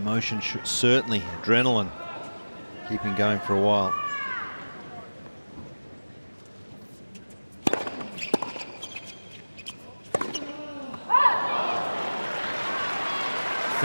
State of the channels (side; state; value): both; inverted; correlation -1.00